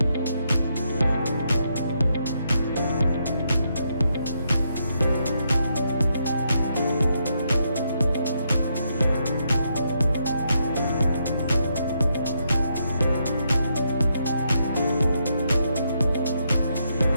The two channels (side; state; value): both; inverted; correlation -0.79